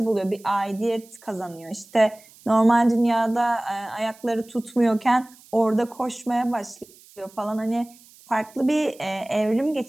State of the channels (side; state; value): right; noise; hiss, 25 dB below the sound